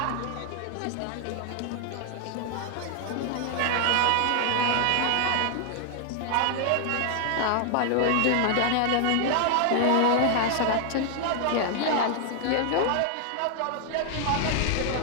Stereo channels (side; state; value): both; different; correlation 0.00